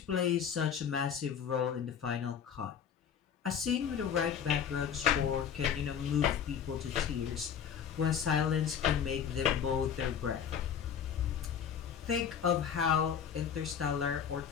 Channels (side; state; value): right; quieter; 7.9 dB